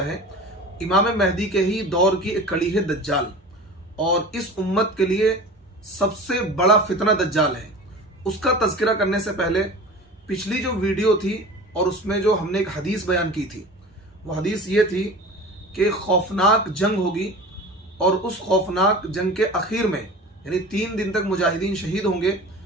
है। इमाम महदी के ही दौर की एक कड़ी है दज्जाल, और इस उम्मत के लिए सबसे बड़ा फितना दज्जाल है। उसका तज़किरा करने से पहले पिछली जो वीडियो थी और उसमें जो हमने एक हदीस बयान की थी, वो हदीस ये थी कि खौफनाक जंग होगी और उस खौफनाक जंग के आखिर में यानी 3 दिन तक मुजाहिदीन शहीद होंगे।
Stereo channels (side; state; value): both; normal; correlation 0.37